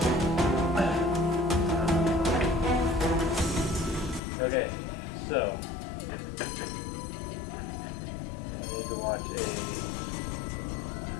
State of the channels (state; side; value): drops out; right; at 4.2 s